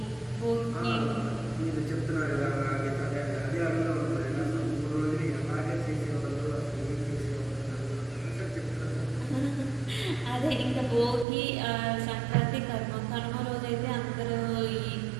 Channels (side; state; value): left; drops out; at 11.2 s